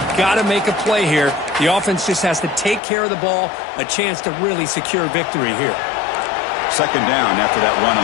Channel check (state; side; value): drops out; right; at 2.8 s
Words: got to make a play here. The offense just has to take care of the ball, a chance to really secure victory here. 2nd down after that run on